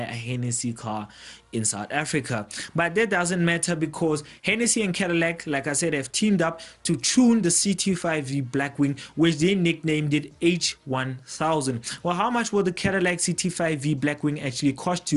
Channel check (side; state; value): both; identical; correlation 1.00